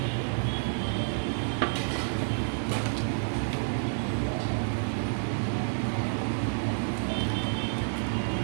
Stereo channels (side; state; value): left; silent; 55 dB below the other